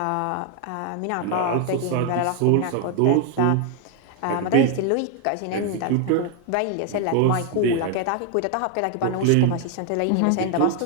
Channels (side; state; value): both; different; correlation 0.01